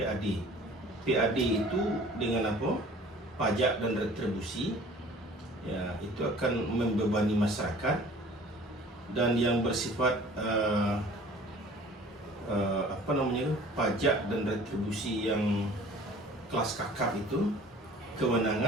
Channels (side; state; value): both; normal; correlation 0.48